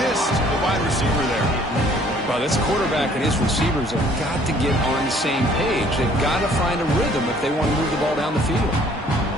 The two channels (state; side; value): normal; both; correlation 0.58